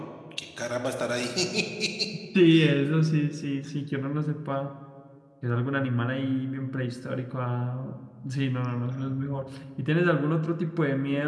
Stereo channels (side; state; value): both; identical; correlation 1.00